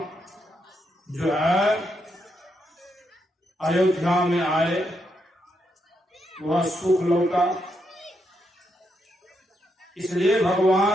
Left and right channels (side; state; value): both; normal; correlation 0.80